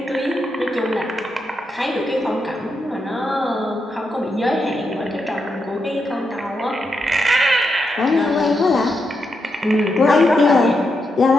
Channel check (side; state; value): both; normal; correlation 0.84